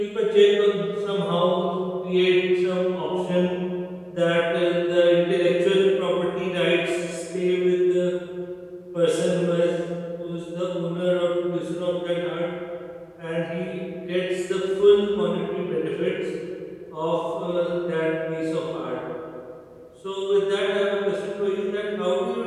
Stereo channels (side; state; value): both; identical; correlation 1.00